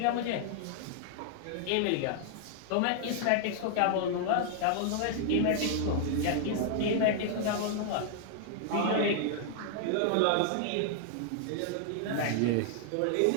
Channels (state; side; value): different; both; correlation -0.01